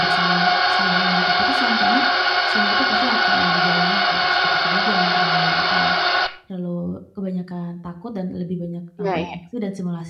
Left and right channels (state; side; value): identical; both; correlation 1.00